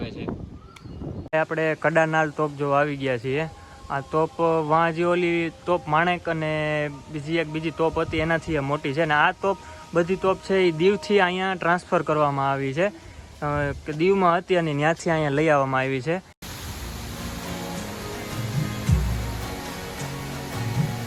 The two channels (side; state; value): both; identical; correlation 1.00